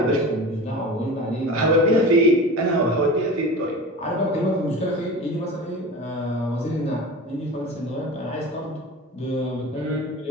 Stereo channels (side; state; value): both; normal; correlation 0.33